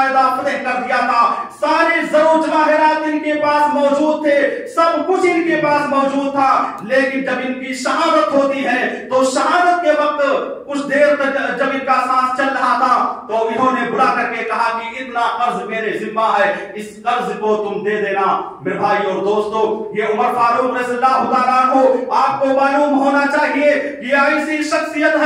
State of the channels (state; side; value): identical; both; correlation 1.00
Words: फतेह कर दिया था। सारे जरो जवाहिरात इनके पास मौजूद थे, सब कुछ इनके पास मौजूद था। लेकिन जब इनकी शहादत होती है तो शहादत के वक्त कुछ देर तक जब इनका सांस चल रहा था तो इन्होंने बुला करके कहा कि इतना कर्ज मेरे जिम्मा है, इस कर्ज को तुम दे देना। मेरे भाई और दोस्तों, ये उमर फारूक रज़ियल्लाहु ताला अन्हु आपको मालूम होना चाहिए कि ऐसी शख्सियत